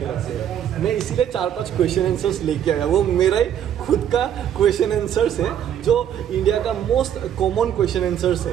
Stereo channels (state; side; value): quieter; left; 9.8 dB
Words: रखते हैं। मैं इसीलिए 4-5 क्वेश्चन आंसर्स लेके आया, वो मेरा ही खुद का क्वेश्चन आंसर्स है जो इंडिया का मोस्ट कॉमन क्वेश्चन आंसर्स